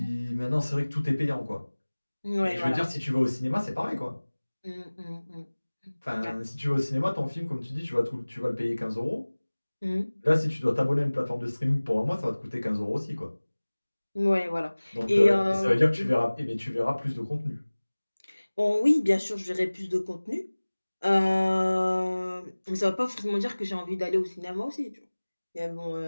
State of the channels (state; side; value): inverted; both; correlation -1.00